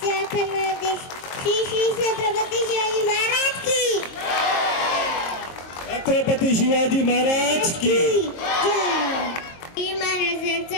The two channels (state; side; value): late; right; 23 ms